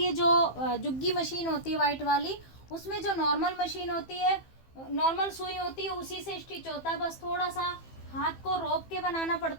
है, जो जुग्गी मशीन होती है व्हाइट वाली, उसमें जो नॉर्मल मशीन होती है, नॉर्मल सुई होती है, उसी से स्टिच होता है। बस थोड़ा सा हाथ को रोक के बनाना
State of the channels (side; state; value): right; late; 15 ms